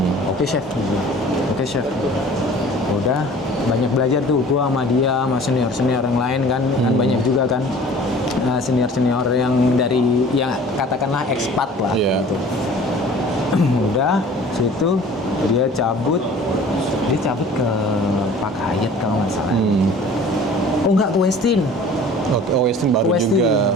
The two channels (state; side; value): normal; both; correlation 0.47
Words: oke chef udah banyak belajar tuh gua sama dia sama senior yang lain kan banyak juga kan senior yang dari yang katakanlah ekspat lah gitu. Udah situ dia cabut ke Pak Hayat kalau nggak salah oh enggak ke Westin Oke, Westin baru juga.